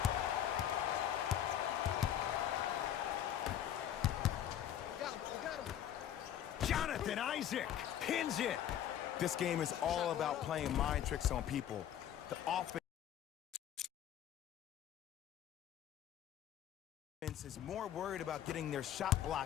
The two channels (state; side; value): quieter; right; 10.7 dB